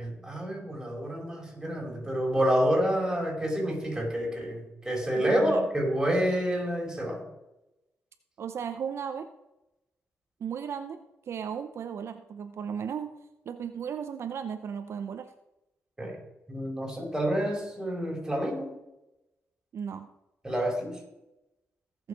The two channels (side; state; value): both; normal; correlation 0.85